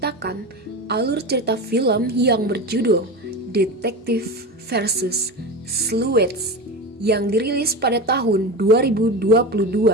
alur cerita film yang berjudul Detective versus Sleuths yang dirilis pada tahun 2022.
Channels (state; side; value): normal; both; correlation 0.24